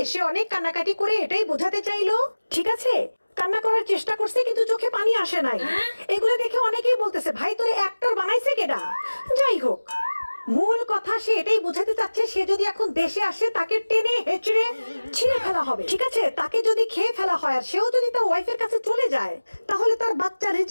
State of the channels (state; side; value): inverted; both; correlation -1.00